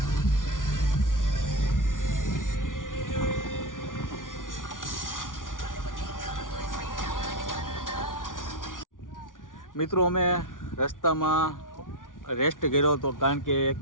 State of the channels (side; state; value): right; late; 0.88 ms